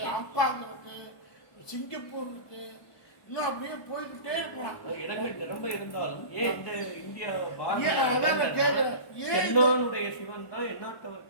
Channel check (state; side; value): late; right; 1.2 ms